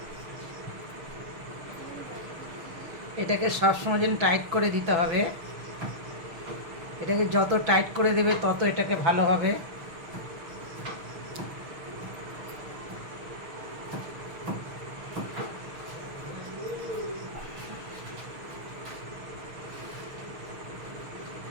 এটাকে সবসময় যেন টাইট করে দিতে হবে। এটাকে যত টাইট করে দেবে তত এটাকে ভালো হবে।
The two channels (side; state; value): left; late; 6.0 ms